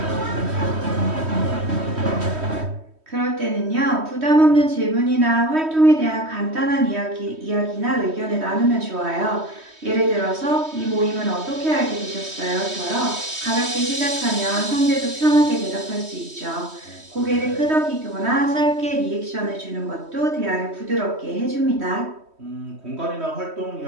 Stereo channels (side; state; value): left; late; 3.1 ms